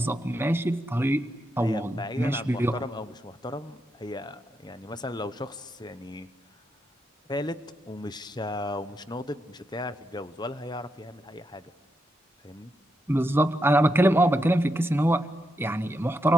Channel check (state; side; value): normal; both; correlation 0.83